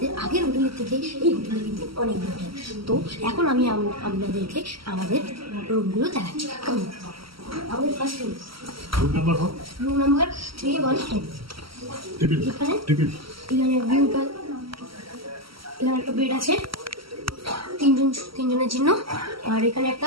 আগের হোটেলের থেকে এই হোটেলে কিন্তু অনেক বেটার। তো এখন আমি আপনাদেরকে আমাদের রুমগুলো দেখাচ্ছি। আমাদের ফার্স্ট রুম নাম্বার 314। এখানে ভিউটা, এখানে একটা বেড আছে তিনজনের জন্য। আর এখানে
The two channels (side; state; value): left; late; 0.75 ms